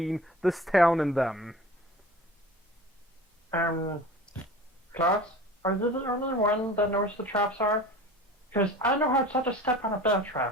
this town and them. Klaus, are you the only one that knows the traps are? Because I know how to step on a bear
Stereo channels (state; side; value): normal; both; correlation 0.39